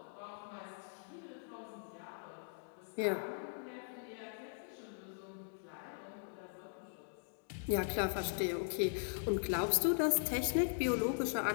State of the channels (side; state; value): right; silent; digital silence